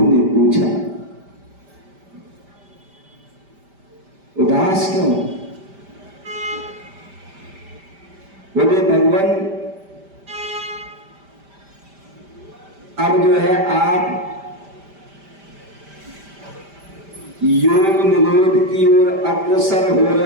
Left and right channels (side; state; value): left; late; 5.1 ms